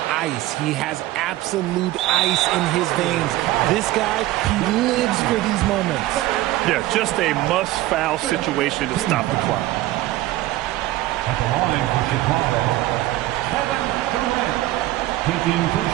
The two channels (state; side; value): quieter; left; 16.3 dB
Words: Ice. He has absolute ice in his veins. This guy, he lives for these moments. Yeah, just a must-foul situation to stop the clock. At the line for Chicago, Kevin Durant, taking